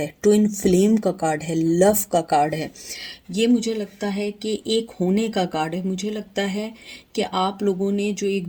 ट्विन फ्लेम का कार्ड है, लव का कार्ड है। ये मुझे लगता है कि एक होने का कार्ड है। मुझे लगता है कि आप लोगों ने जो एक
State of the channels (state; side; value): identical; both; correlation 1.00